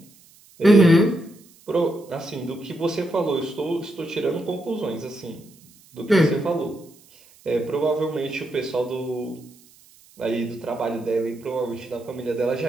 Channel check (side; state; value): right; noise; hiss, 27 dB below the sound